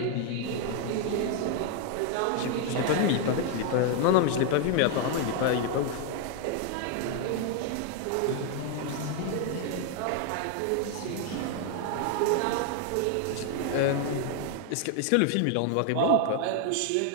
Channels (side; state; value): both; different; correlation 0.01